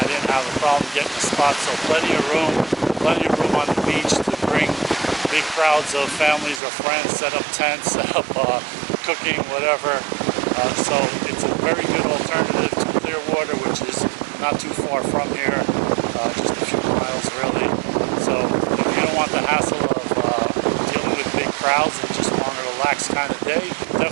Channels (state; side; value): drops out; left; at 6.6 s